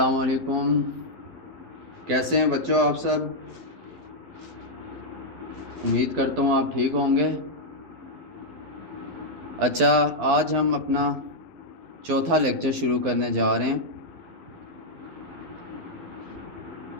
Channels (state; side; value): late; left; 12 ms